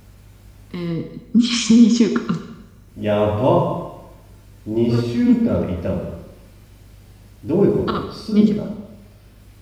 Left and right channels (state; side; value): identical; both; correlation 1.00